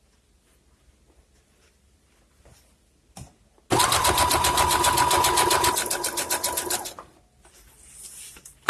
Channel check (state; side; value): identical; both; correlation 1.00